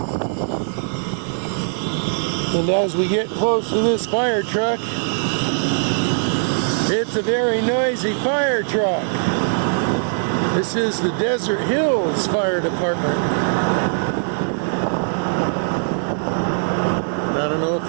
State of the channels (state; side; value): silent; left; 61 dB below the other